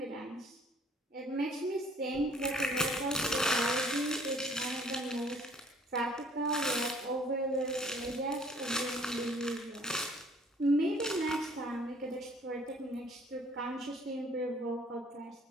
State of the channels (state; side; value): normal; both; correlation 0.57